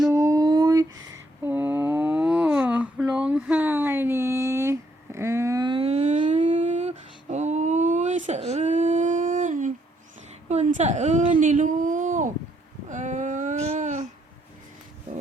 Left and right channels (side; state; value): both; normal; correlation 0.72